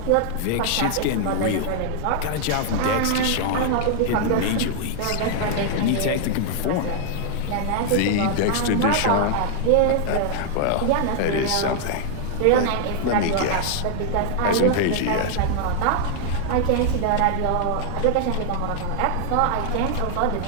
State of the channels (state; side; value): different; both; correlation 0.00